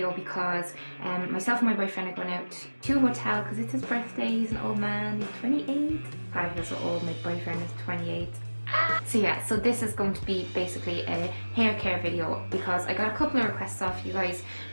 because myself and my boyfriend are going out to a hotel because it's his birthday. He's an old man, he's 28. I feel so old, my boyfriend is 28. So yeah, so this is going to be basically a hair care video because I got a couple of requests off you guys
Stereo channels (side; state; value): both; inverted; correlation -1.00